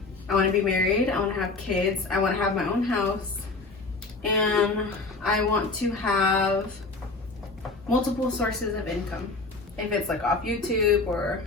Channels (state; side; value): quieter; right; 3.6 dB